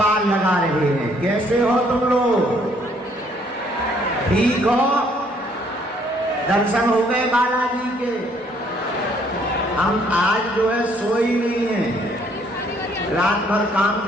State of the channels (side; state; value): both; normal; correlation 0.65